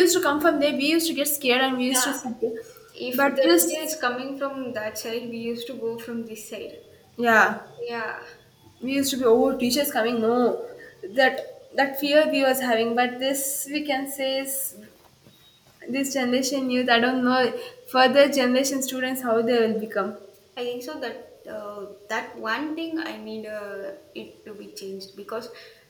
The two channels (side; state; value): both; identical; correlation 1.00